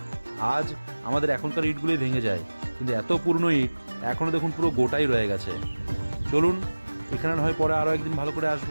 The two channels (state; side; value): inverted; both; correlation -1.00